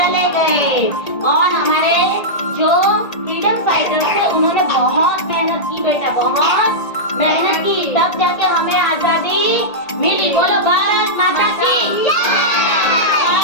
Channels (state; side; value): late; right; 1.8 ms